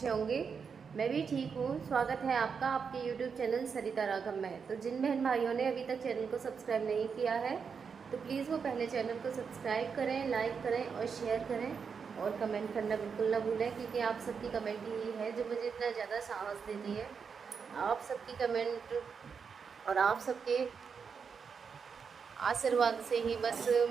होंगे। मैं भी ठीक हूँ। स्वागत है आपका आपके YouTube चैनल सरिता राघव में। तो जिन बहन भाइयों ने अभी तक चैनल को सब्सक्राइब नहीं किया है तो प्लीज़ वो पहले चैनल को सब्सक्राइब करें, लाइक करें और शेयर करें और कमेंट करना बिल्कुल ना भूलें, क्योंकि आप सबकी कमेंट ही है जो मुझे इतना ज़्यादा साहस देती है। आप सबकी कमेंट और आप सबके आशीर्वाद से ही बस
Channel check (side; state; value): left; quieter; 6.1 dB